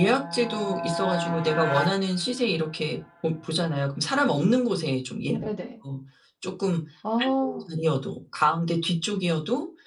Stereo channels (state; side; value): identical; both; correlation 1.00